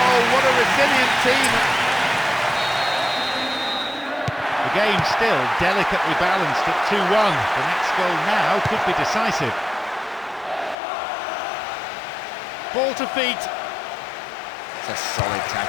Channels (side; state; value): right; drops out; at 10.8 s